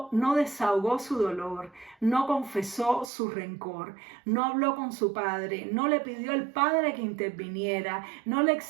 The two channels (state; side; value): drops out; left; at 3.1 s